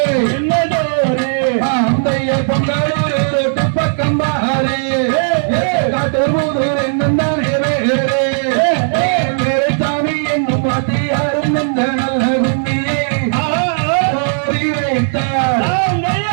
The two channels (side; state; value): left; silent; digital silence